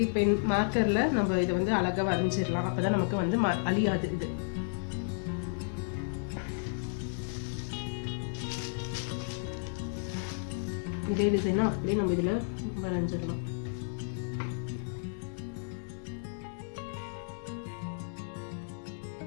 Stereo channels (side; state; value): right; silent; digital silence